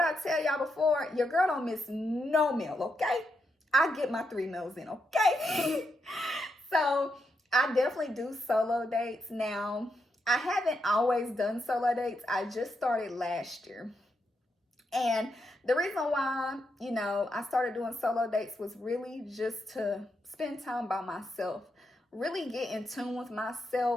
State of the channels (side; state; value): both; normal; correlation 0.82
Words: tell y'all before, your girl don't miss no meal, okay? I get my 3 meals in, okay? So I definitely do solo dates now. I haven't always done solo dates. I just started last year. And the reason why, I started doing solo dates was really just to spend time by myself, really get in tune with